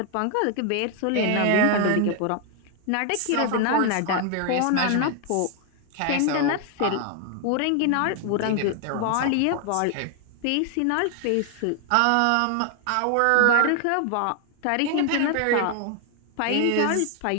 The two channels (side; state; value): both; different; correlation 0.00